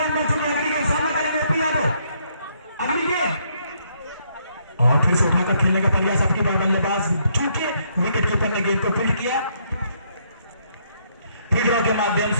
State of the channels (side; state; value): both; inverted; correlation -0.71